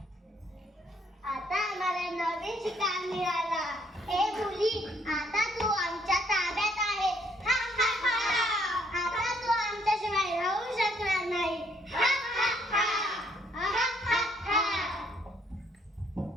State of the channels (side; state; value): both; normal; correlation 0.67